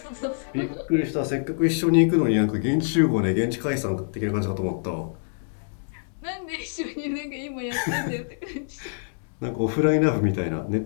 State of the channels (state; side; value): silent; right; digital silence